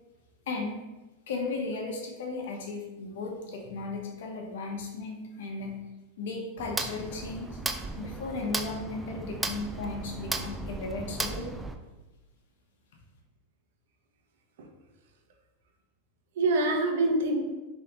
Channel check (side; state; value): both; normal; correlation -0.02